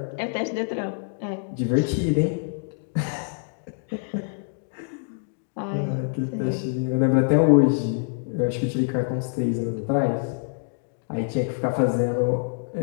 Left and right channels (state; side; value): silent; right; digital silence